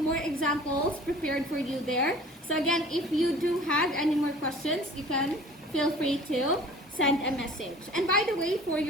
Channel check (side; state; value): both; normal; correlation 0.47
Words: more examples prepared for you there. So again, if you do have any more questions, you can feel free to send a message. And by the way, for